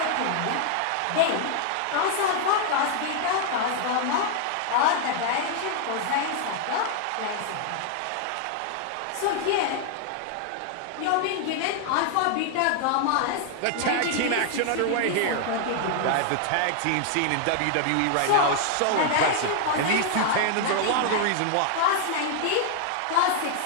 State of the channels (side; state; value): both; different; correlation 0.00